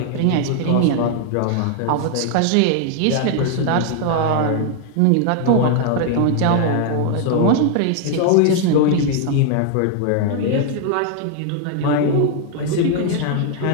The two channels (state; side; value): different; both; correlation 0.00